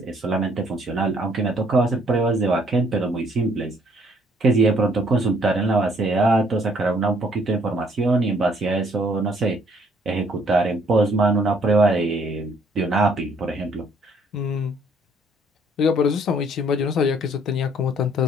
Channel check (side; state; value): both; normal; correlation 0.64